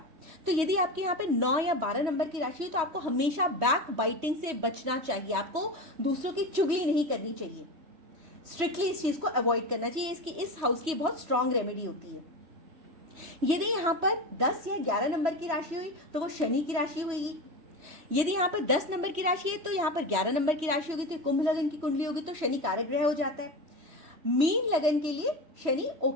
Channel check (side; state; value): left; late; 3.1 ms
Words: तो यदि आपके यहाँ पे 9 या 12 नंबर की राशि हो तो आपको हमेशा बैक बाइटिंग से बचना चाहिए, आपको दूसरों की चुगली नहीं करनी चाहिए, स्ट्रिक्टली इस चीज को अवॉइड करना चाहिए। इसकी इस हाउस की बहुत स्ट्रांग रेमेडी होती है। यदि यहाँ पर 10 या 11 नंबर की राशि हुई तो वो शनि की राशि हुई। यदि यहाँ पर 10 नंबर की राशि है तो यहाँ पर 11 नंबर की राशि होगी तो कुंभ लगन की कुंडली होगी, तो शनि कारक ग्रह हो जाता है। मीन लगन के लिए शनि